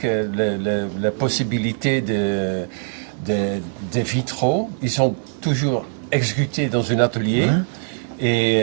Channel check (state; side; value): silent; left; 65 dB below the other